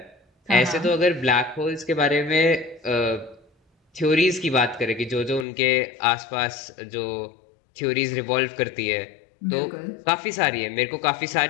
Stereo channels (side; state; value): right; drops out; at 5.5 s